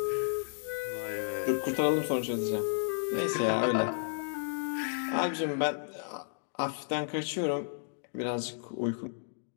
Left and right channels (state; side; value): silent; right; digital silence